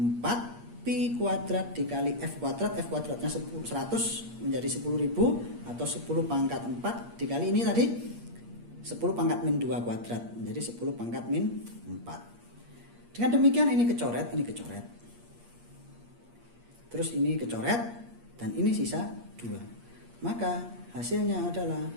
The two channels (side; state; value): left; late; 8.5 ms